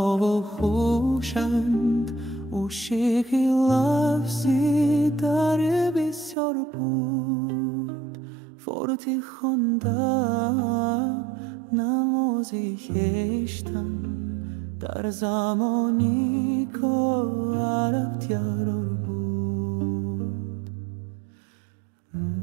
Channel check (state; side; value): drops out; left; at 6.4 s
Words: و خوشند عشقی لفظی در بسیار بود. فارتی خواندم نمازی کشتم در زمانی که عرب تیار بود.